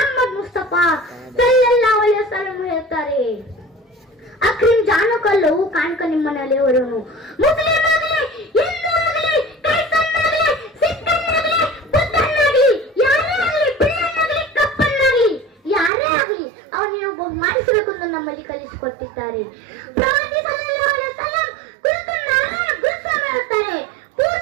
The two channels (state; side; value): drops out; left; at 15.9 s